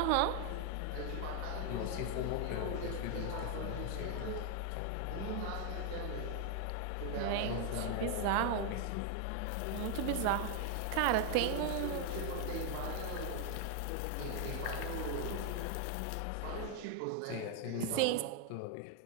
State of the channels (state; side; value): different; both; correlation 0.00